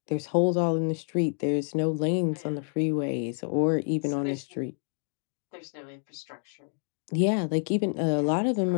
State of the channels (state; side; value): silent; right; digital silence